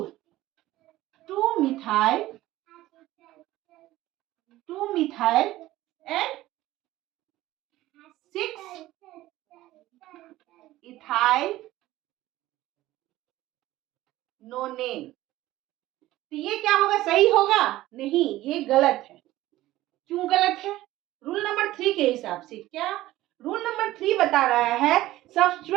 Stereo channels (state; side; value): quieter; left; 16.1 dB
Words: 2 मिथाइल एंड 6 इथाइल नोनेन, तो ये क्या होगा, सही होगा नहीं, ये गलत है। क्यों गलत है, रूल नंबर 3 के हिसाब से। क्या रूल नंबर 3 बता रहा है,